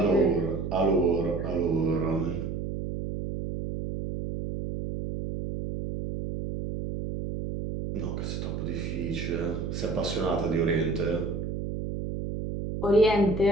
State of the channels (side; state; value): right; noise; hum, 4 dB below the sound